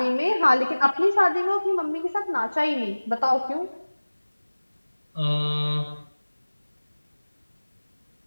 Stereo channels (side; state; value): both; inverted; correlation -1.00